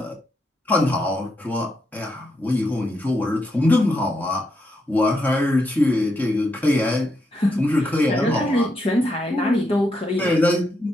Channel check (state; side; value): normal; both; correlation 0.81